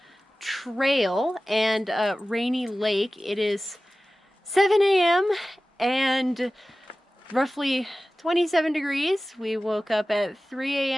Trail and Rainy Lake. It is 7 a.m. and roughly 27 degrees. We woke up at 3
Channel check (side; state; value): both; normal; correlation 0.96